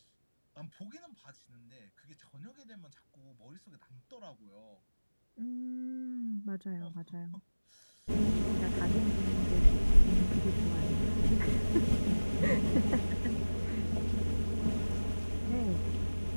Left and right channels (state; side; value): inverted; both; correlation -1.00